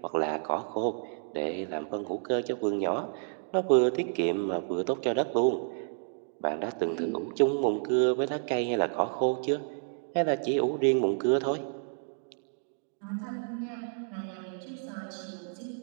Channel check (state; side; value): silent; left; digital silence